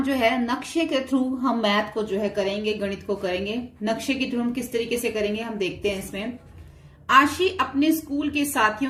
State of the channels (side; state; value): both; identical; correlation 1.00